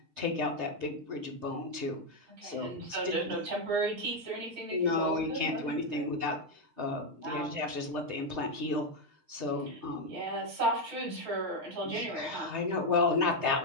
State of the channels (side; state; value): left; late; 6.5 ms